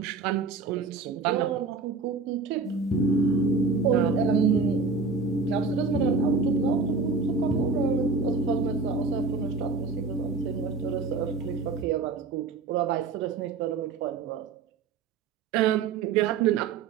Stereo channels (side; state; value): left; quieter; 4.4 dB